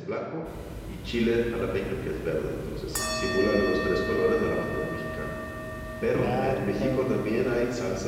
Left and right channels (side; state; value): both; identical; correlation 1.00